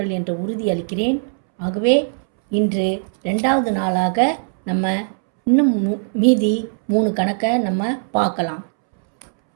என்ற உறுதி அளிக்கிறேன். ஆகவே இன்று 2வது நாளாக நம்ம இன்னும் மீதி 3 கணக்கை நம்ம பார்க்கலாம்.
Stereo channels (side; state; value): left; silent; 66 dB below the other